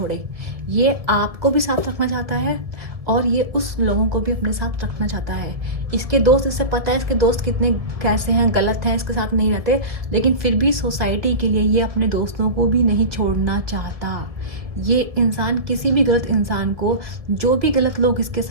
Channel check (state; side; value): late; left; 1.5 ms